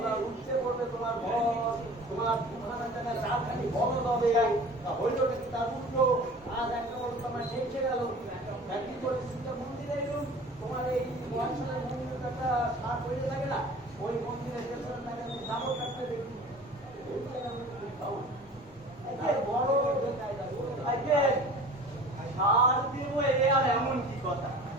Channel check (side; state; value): both; normal; correlation 0.42